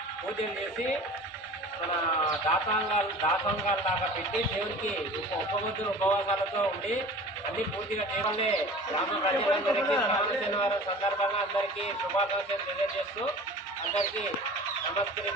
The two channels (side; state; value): both; normal; correlation 0.40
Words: పూజలు చేసి మన దాతంగాలు లాగా పెట్టి దేవుడికి ఉపబుద్ధులు ఉపవాసాలతో ఉండి అన్ని పూర్తిగా దేవుడే గ్రామ ప్రజలందరికీ శ్రావణ శనివారం సందర్భంగా అందరికీ శుభాకాంక్షలు తెలియజేస్తూ అందరికీ